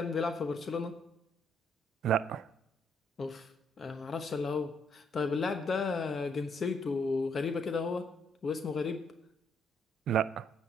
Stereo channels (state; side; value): normal; both; correlation 0.70